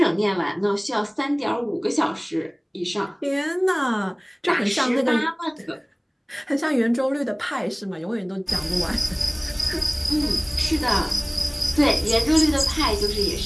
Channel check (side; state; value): both; identical; correlation 1.00